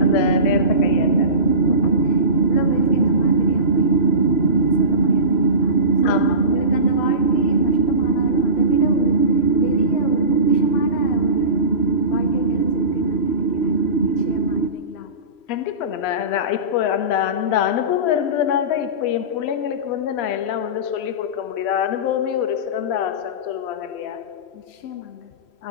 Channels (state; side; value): late; right; 3.0 ms